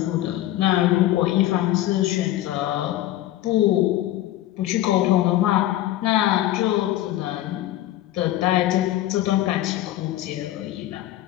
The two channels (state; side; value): quieter; right; 14.4 dB